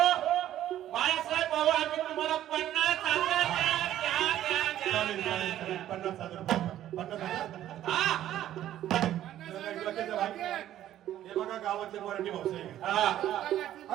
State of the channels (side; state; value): left; quieter; 12.4 dB